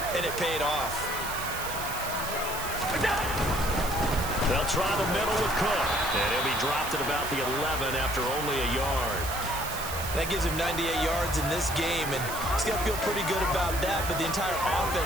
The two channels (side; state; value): right; noise; hiss, 8 dB below the sound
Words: and it paid off. They'll try the middle with Cook. And he'll be dropped at about the 11 after only a yard. That gives him 98 yards in this game, and he's going to feel pretty good about that, but the entire